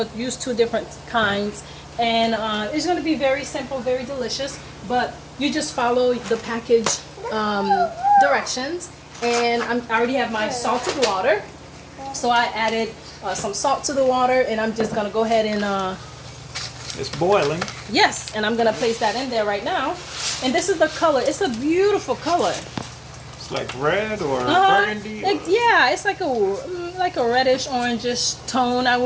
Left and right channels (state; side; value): identical; both; correlation 1.00